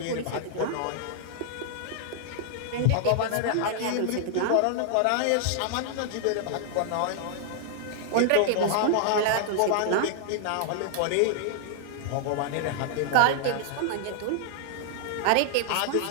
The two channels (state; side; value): different; both; correlation -0.01